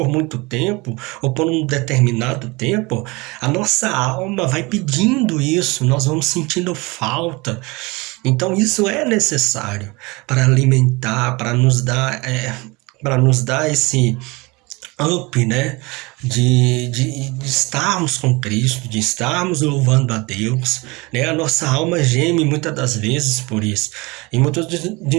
muito tempo, ou por um determinado tempo, a nossa alma vai pedindo isso, nós vamos sentindo falta. Então, isso é necessário para alimentar, para nos dar esse up, né? De estarmos com Cristo, de estarmos louvando a Deus, né? A nossa alma geme muitas das vezes por isso. E muitos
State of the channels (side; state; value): left; quieter; 25.0 dB